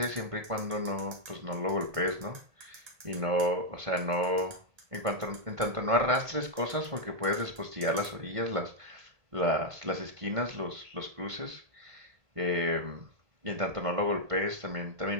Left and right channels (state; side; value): late; left; 1.7 ms